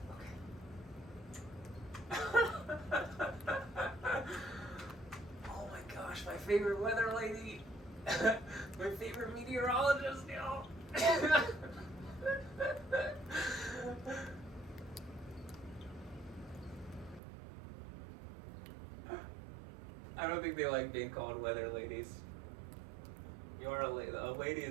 Oh my gosh, my favorite weather lady. My favorite meteorologist, y'all. don't think they like being called weather ladies. You are a lady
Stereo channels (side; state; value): left; drops out; at 17.2 s